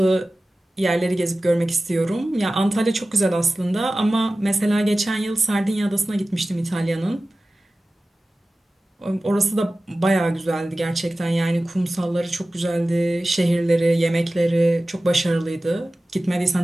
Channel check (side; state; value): both; normal; correlation 0.96